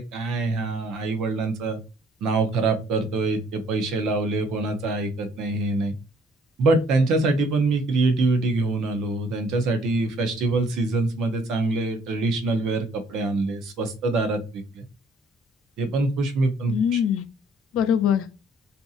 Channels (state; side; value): normal; both; correlation 0.61